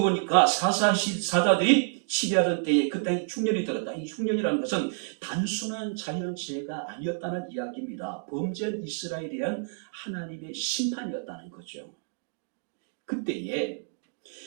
사사들이 시대하던 때에 그 땅에 흉년이 들었다. 이 흉년이라는 것은 단순한 자연재해가 아니었다는 이야기입니다. 범죄한 이스라엘에 대한 하나님의 심판이었다는 거죠. 그때에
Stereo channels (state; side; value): silent; left; digital silence